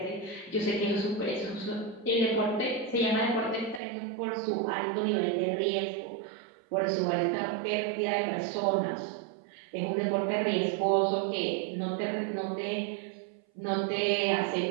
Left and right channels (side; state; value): left; drops out; at 3.8 s